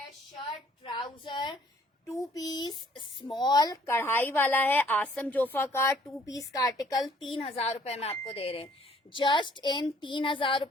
शर्ट ट्राउजर 2 पीस स्मॉल कढ़ाई वाला है, आसम जोफा का 2 पीस का आर्टिकल 3,000 में आपको दे रहे हैं। जस्ट इन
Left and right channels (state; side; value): normal; both; correlation 0.60